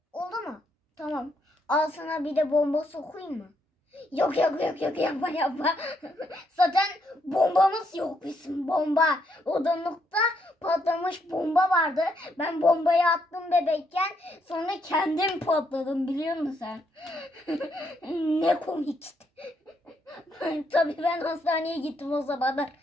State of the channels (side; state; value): both; normal; correlation 0.75